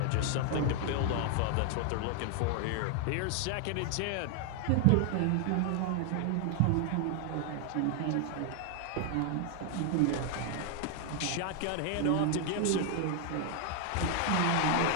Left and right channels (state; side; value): different; both; correlation 0.00